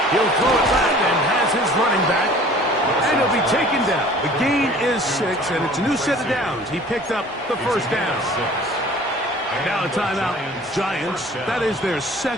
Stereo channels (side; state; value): both; normal; correlation 0.48